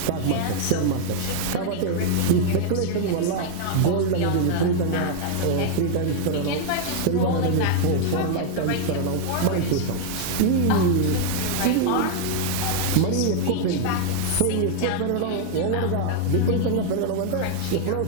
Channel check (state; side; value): different; both; correlation 0.00